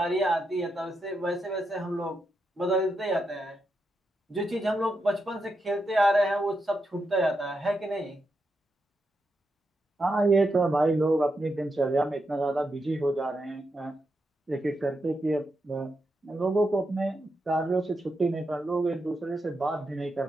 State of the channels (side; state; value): both; normal; correlation 0.85